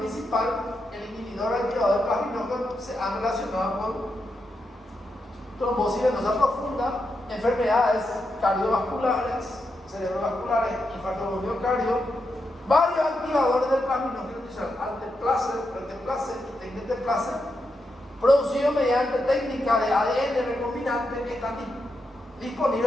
el inhibidor activador del plasminógeno, se han relacionado con trombosis venosa profunda, enfermedades cardiovasculares, cerebrovasculares, infarto del miocardio. Varios activadores del plasminógeno tisular, alteplase, reteplase y tecneteplase, producidos mediante técnica de ADN recombinante, que están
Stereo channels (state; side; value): normal; both; correlation 0.85